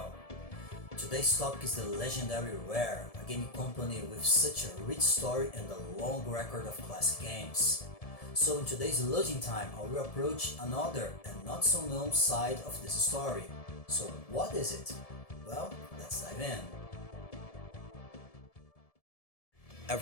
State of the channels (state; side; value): late; right; 1.7 ms